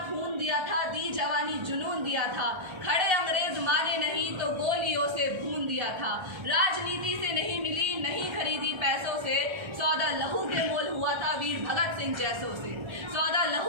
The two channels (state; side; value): late; left; 1.3 ms